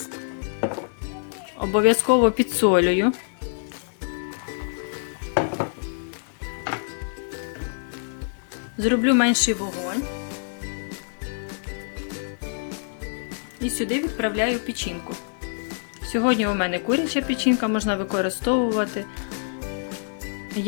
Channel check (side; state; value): right; silent; 56 dB below the other